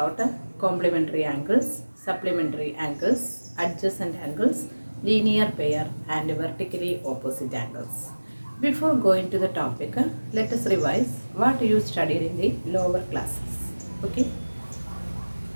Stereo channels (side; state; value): both; inverted; correlation -1.00